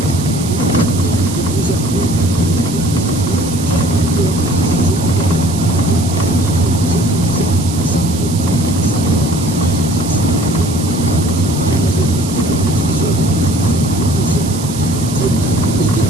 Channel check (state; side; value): noise; right; hiss, 11 dB below the sound